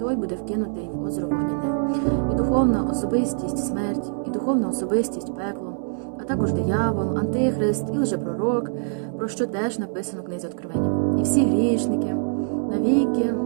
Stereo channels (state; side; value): silent; left; digital silence